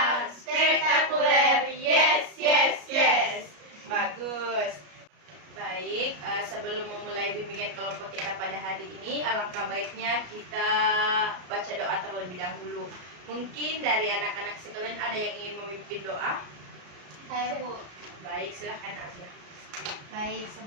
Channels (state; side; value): late; left; 34 ms